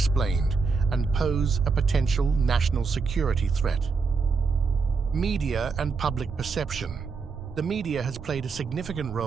and pose a potential national security threat. Media and public perception. The media has played a significant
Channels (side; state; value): left; quieter; 4.9 dB